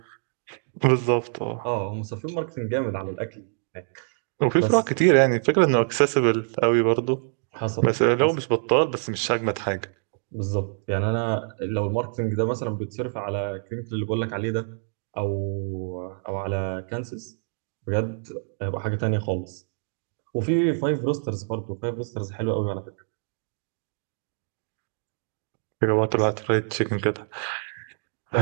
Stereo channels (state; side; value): silent; left; digital silence